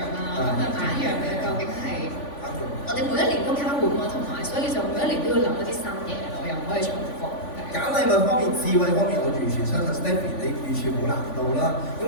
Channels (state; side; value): late; right; 3.5 ms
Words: 啊？咁買一樣嘢究竟係我哋每一年都交換啊，同埋所以就每一年都要諗一啲新嘢咯，又唔可以重複。揀禮物方面、智慧方面，我完全相信 Stephy 你完全冇難度啦。